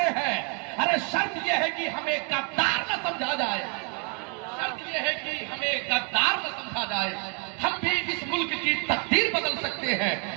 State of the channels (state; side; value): quieter; left; 36.8 dB